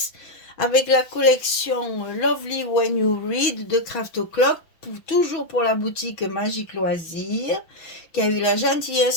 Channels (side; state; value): right; late; 6.2 ms